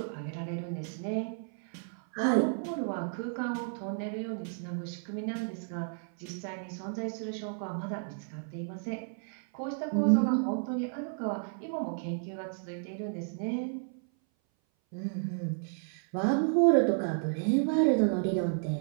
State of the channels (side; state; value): left; silent; 56 dB below the other